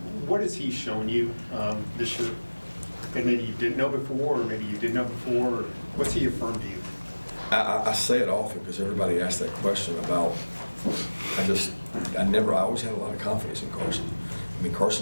What has he shown you this year that maybe you didn't know before, or maybe you did know before? Or what's he affirmed to you? I say it often because everybody asks that question about, I always had a lot of confidence in Carson. I mean,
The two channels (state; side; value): inverted; both; correlation -1.00